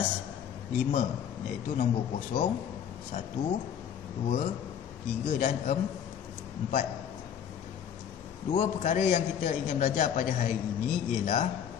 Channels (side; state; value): right; quieter; 8.8 dB